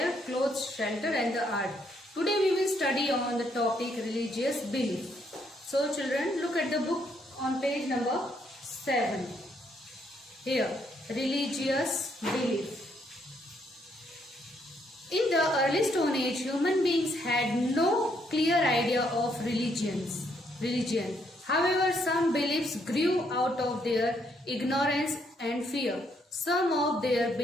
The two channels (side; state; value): both; normal; correlation 0.73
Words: clothes, shelter and the art. Today we will study on the topic religious belief. So children, look at the book on page number 7. Here, religious belief. In the early Stone Age, human beings had no clear idea of religion. However, some beliefs grew out of their ignorance and fear. Some of their